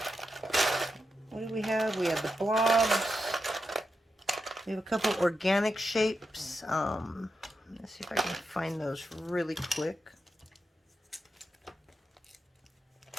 What do we have? We have the blobs. We have a couple organic shapes. Let's see if I can find those really quick.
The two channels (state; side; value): normal; both; correlation 0.87